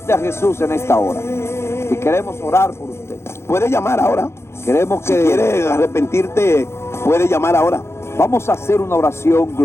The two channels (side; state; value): right; late; 0.13 ms